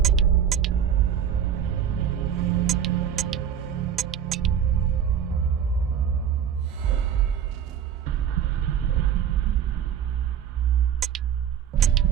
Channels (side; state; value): left; quieter; 8.9 dB